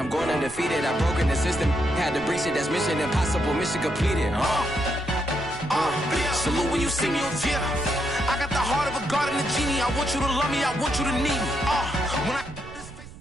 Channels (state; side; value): noise; right; rumble, 16 dB below the sound